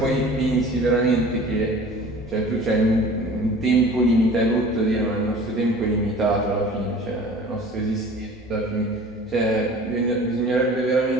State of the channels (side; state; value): both; normal; correlation 0.43